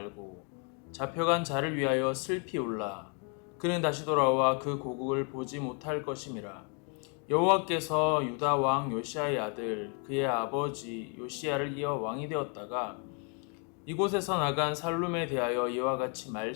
잡혀간 자를 위하여 슬피 울라. 그는 다시 돌아와 그 고국을 보지 못할 것임이라. 여호와께서 유다 왕 요시야의 아들 그의 아버지 요시야를 이어 왕이 되었다가 이곳에서 나간 살룸에 대하여 이와 같이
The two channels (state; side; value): quieter; right; 38.1 dB